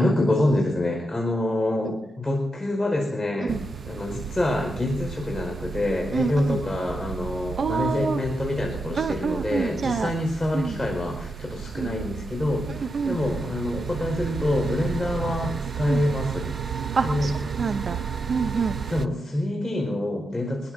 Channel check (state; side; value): normal; both; correlation 0.85